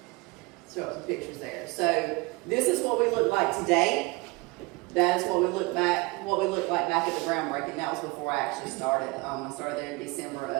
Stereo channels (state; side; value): quieter; left; 24.8 dB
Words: show some pictures there. So this is what we look like today. That is what we looked like back at the groundbreaking. That was before I actually started. I started there in December